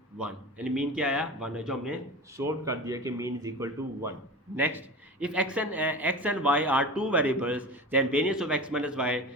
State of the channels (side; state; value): both; normal; correlation 0.31